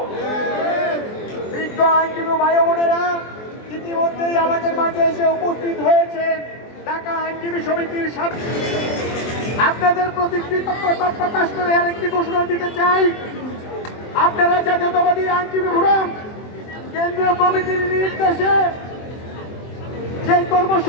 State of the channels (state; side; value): late; right; 23 ms